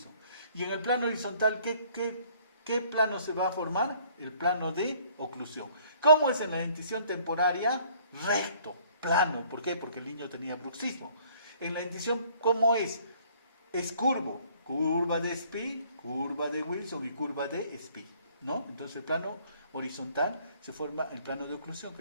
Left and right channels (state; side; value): inverted; both; correlation -0.59